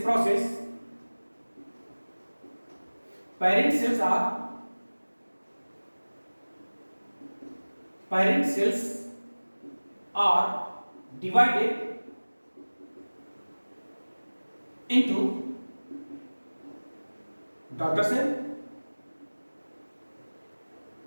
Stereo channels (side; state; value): both; inverted; correlation -1.00